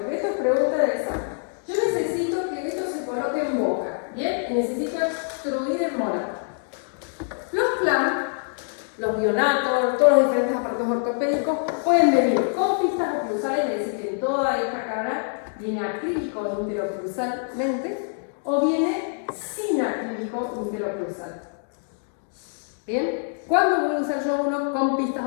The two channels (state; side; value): silent; right; 62 dB below the other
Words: esto es necesito extruir el molar. Los CLAM, los bionatos, todos los diferentes aparatos ortopédicos pueden venir con pistas oclusales, es decir, que en toda esta cara viene acrílico interoclusalmente, o viene sin acrílico interoclusal. ¿Bien? ¿Cuándo voy a usar yo uno con pistas